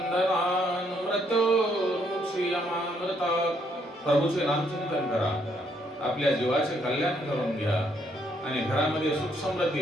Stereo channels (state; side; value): normal; both; correlation 0.71